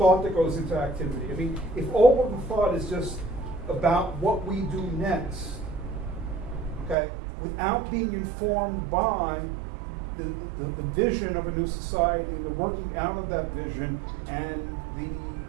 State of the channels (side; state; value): left; drops out; at 7.0 s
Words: that goes into activity. I mean, if all of the thought is just about what we do next, okay, without being informed by the vision of a new society, the working out of that vision, and the